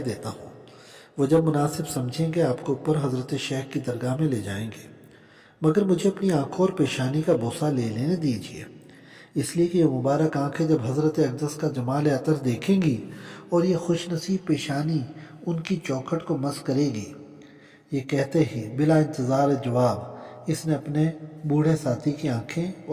دیتا ہوں، وہ جب مناسب سمجھیں گے آپ کو اوپر حضرت شیخ کی درگاہ میں لے جائیں گے، مگر مجھے اپنی آنکھوں اور پیشانی کا بوسہ لے لینے دیجیے، اس لیے کہ یہ مبارک آنکھیں جب حضرت اقدس کا جمال عطر دیکھیں گی اور یہ خوش نصیب پیشانی ان کی چوکھٹ کو مس کرے گی۔ یہ کہتے ہی بلا انتظار جواب اس نے اپنے بوڑھے ساتھی کی آنکھیں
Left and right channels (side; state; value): both; identical; correlation 1.00